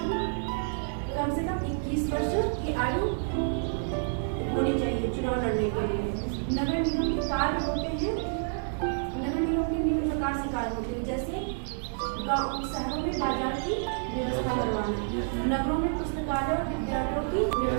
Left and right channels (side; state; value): left; silent; digital silence